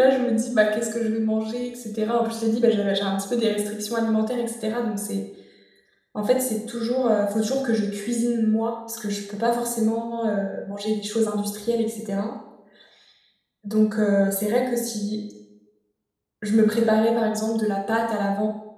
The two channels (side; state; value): both; identical; correlation 1.00